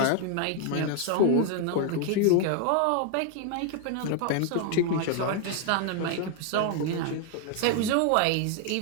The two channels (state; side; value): different; both; correlation 0.00